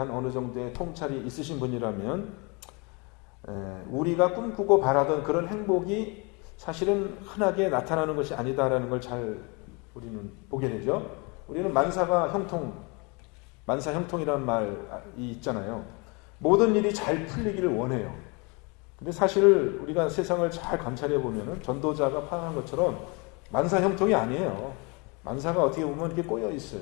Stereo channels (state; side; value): quieter; right; 30.1 dB